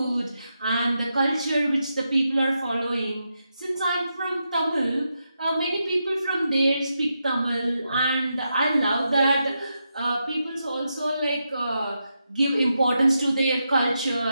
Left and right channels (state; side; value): inverted; both; correlation -0.85